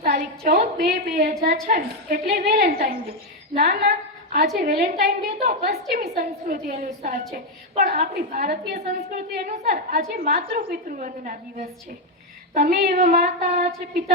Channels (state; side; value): normal; both; correlation 0.04